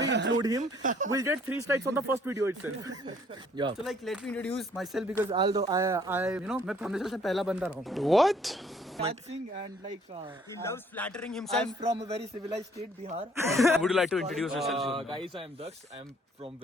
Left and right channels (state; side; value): normal; both; correlation 0.61